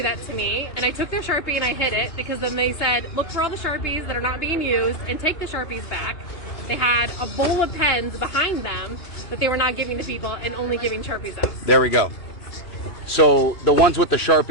that to me, and I took their Sharpie and I hid it because then they said, look for all the Sharpies that are not being used and take the Sharpies back. They had a bowl of pens behind them that they were not giving to people and only giving Sharpies out. There we go. So the ones with the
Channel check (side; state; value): right; late; 2.9 ms